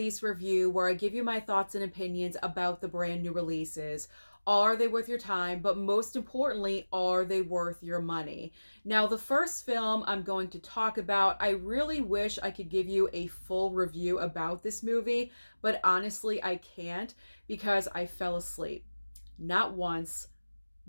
review where I give you my thoughts and opinions about the brand new releases. Are they worth your time? But most importantly, are they worth your money? Now, the first film I'm going to talk about, I really wish I could give you a full review about this movie, but honestly, I can't because I fell asleep. Not once,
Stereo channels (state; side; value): inverted; both; correlation -1.00